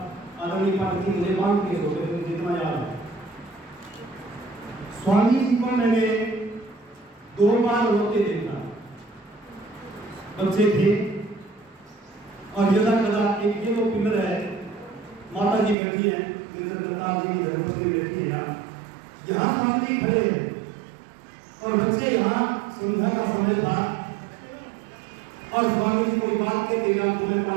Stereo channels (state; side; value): drops out; left; at 15.8 s